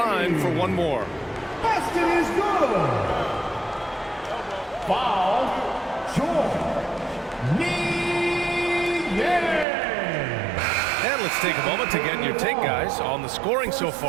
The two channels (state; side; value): drops out; left; at 9.7 s